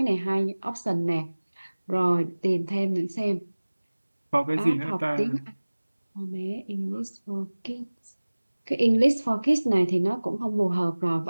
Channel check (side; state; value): both; inverted; correlation -1.00